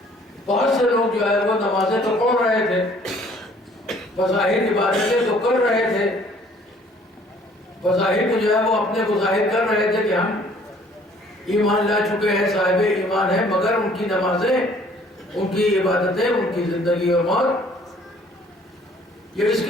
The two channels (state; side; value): normal; both; correlation 0.57